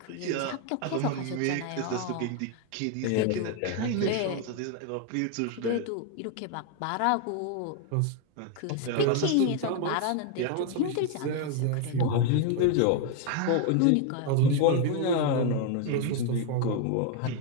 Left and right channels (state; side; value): different; both; correlation 0.01